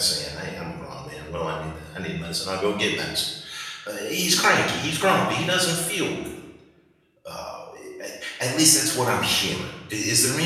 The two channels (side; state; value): both; identical; correlation 1.00